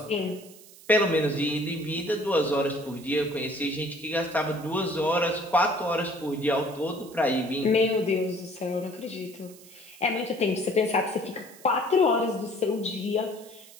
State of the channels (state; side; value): noise; right; hiss, 21 dB below the sound